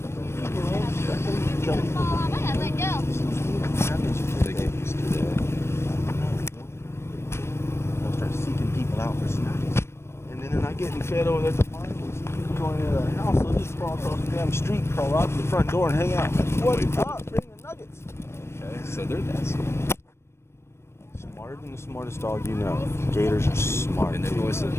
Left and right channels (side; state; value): right; late; 0.13 ms